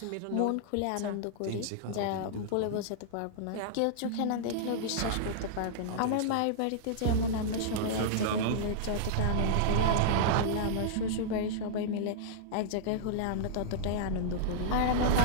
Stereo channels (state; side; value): different; both; correlation -0.02